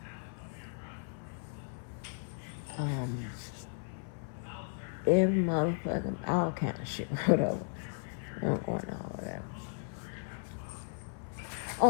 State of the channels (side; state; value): right; silent; 54 dB below the other